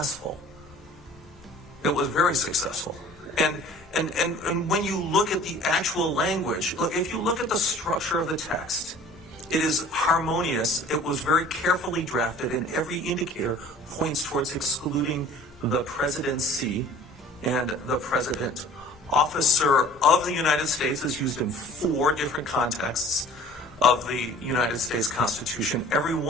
It was very successful. And when you look at the actual language, look, if you look at the structure of the text, it is harmonious. It was very carefully drafted, and every indicator points towards excluding the presidency and the president. Officer of the United States is used in 4 different contexts of the United States Constitution, every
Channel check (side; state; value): both; normal; correlation 0.48